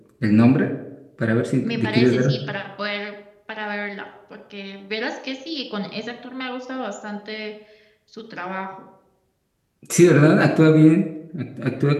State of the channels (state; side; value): identical; both; correlation 1.00